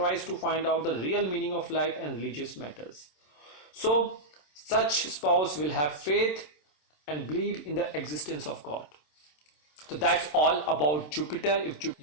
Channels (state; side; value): late; right; 27 ms